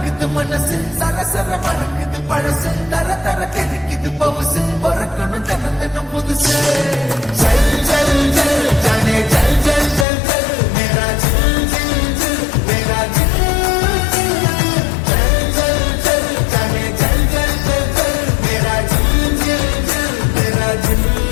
பறக்குது மனசு சரசர மறக்குது பழசு தர தர கிடைக்குது பவுசு பறக்கணும் தினம் தினம் புதுசு ஜல் ஜல் ஜல் ஜானே ஜல் ஜல் ஜல் ஜல் மேரா ஜில் ஜில் ஜில் மேரா ஜில் ஜல் ஜல் ஜல் ஜானே ஜல் ஜல் ஜல் ஜல் மேரா ஜில் ஜில் ஜில் மேரா ஜில்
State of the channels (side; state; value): right; drops out; at 10.1 s